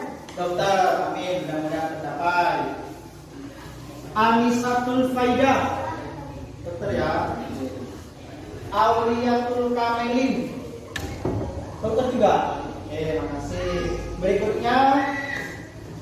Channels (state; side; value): identical; both; correlation 1.00